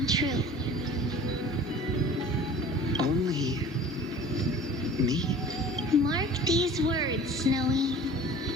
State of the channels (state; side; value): normal; both; correlation 0.44